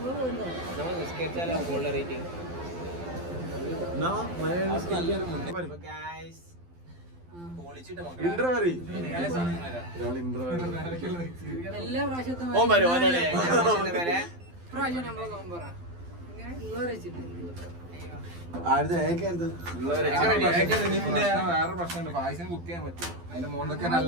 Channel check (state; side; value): late; left; 12 ms